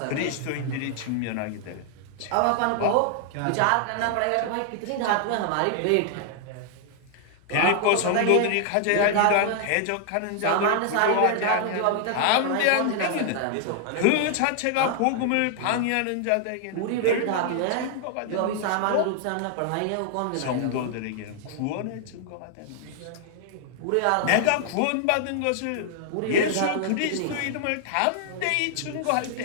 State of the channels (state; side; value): different; both; correlation 0.00